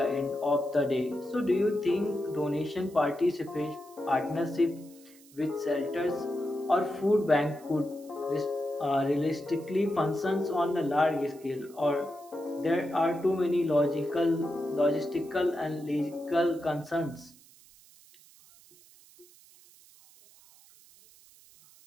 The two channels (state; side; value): noise; right; hiss, 25 dB below the sound